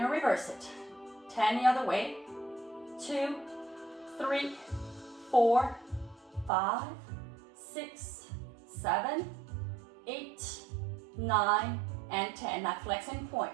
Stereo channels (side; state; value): left; drops out; at 6.5 s